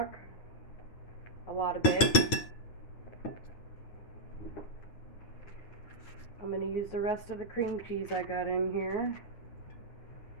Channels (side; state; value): right; late; 9.4 ms